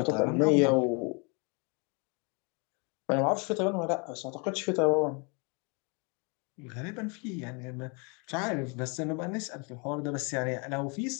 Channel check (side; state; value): right; quieter; 33.3 dB